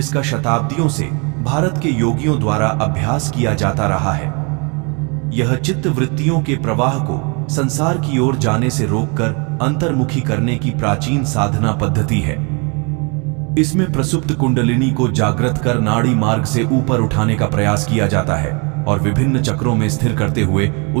शताब्दियों से भारत के योगियों द्वारा अभ्यास किया जाता रहा है। यह चित्त वृत्तियों के प्रवाह को संसार की ओर जाने से रोककर अंतर्मुखी करने की प्राचीन साधना पद्धति है। इसमें प्रसुप्त कुंडलिनी को जागृत कर नाड़ी मार्ग से ऊपर उठाने का प्रयास किया जाता है और विभिन्न चक्रों में स्थिर करते हुए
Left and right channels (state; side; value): quieter; left; 32.9 dB